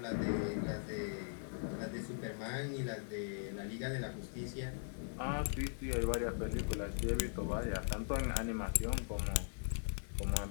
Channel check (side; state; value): right; silent; digital silence